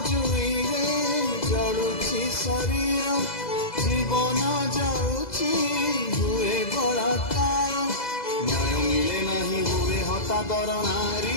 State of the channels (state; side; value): late; right; 2.0 ms